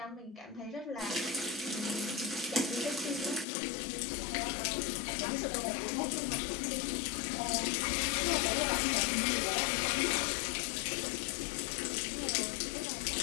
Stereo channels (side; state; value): right; drops out; at 3.5 s